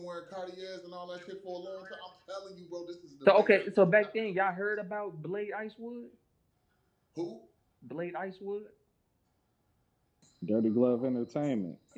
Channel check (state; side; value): identical; both; correlation 1.00